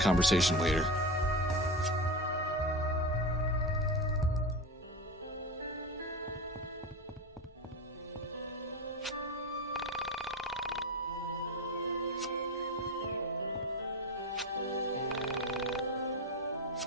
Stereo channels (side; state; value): both; normal; correlation 0.23